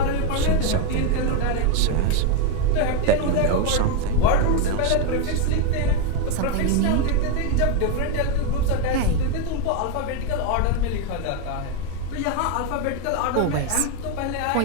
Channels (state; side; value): different; both; correlation 0.02